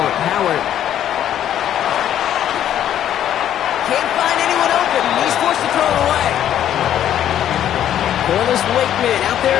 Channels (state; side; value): quieter; right; 10.8 dB